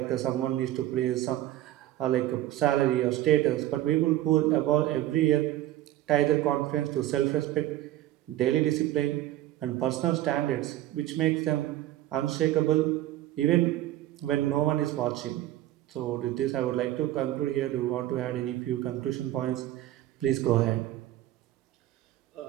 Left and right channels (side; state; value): left; quieter; 14.4 dB